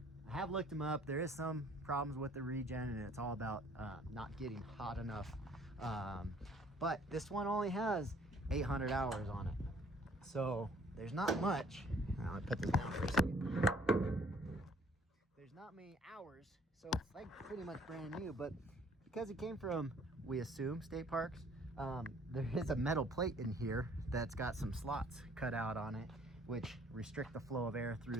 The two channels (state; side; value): normal; both; correlation 0.58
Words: have looked them up. There is some problems with the regen, and it's all about not getting hot enough. But this one only has 800 hours on it, so there's not much. I'll put this down for a second. There's not many hours, so it's like pretty much brand new. But because it came from, we assume, state parks, there is a metal plate in here that's got some slots cut out on it, which restrict the flow of air